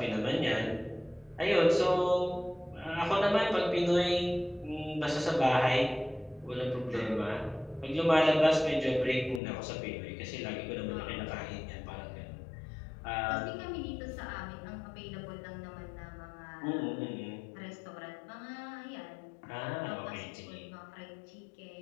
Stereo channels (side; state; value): right; drops out; at 9.4 s